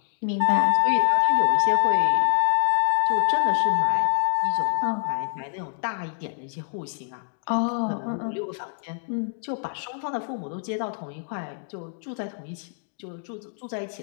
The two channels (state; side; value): silent; right; digital silence